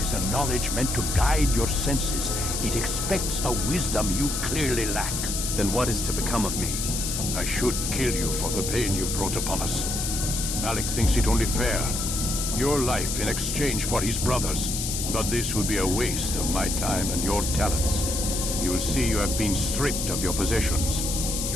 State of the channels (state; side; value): noise; left; hiss, 2 dB below the sound